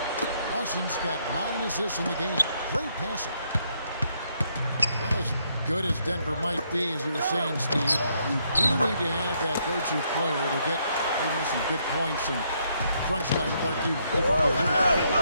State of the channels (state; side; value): inverted; both; correlation -0.73